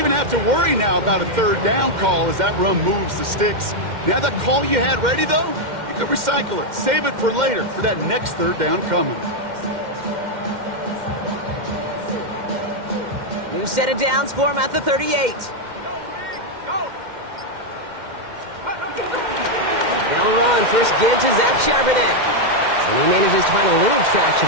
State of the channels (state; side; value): late; left; 2.1 ms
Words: have to worry now about a third down call as that run moves the sticks. Now that call you had ready, though, you can recycle it. Save it for later for that next third down coming. New set of downs for him at the 38. They'll run. First give to Zach Charbonnet. And he manages to find a little